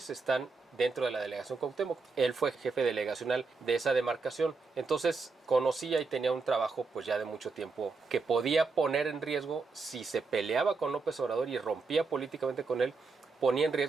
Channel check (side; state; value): left; quieter; 4.3 dB